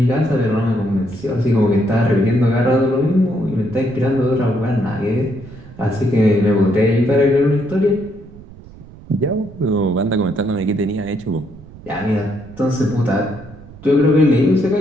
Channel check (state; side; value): noise; right; rumble, 19 dB below the sound